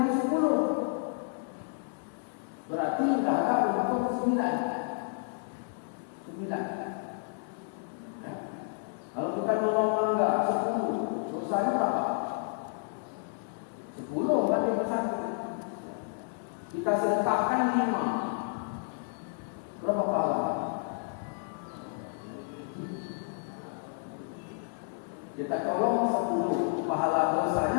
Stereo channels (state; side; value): silent; right; 57 dB below the other